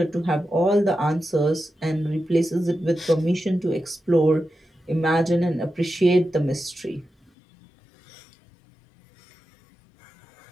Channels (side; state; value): right; drops out; at 7.3 s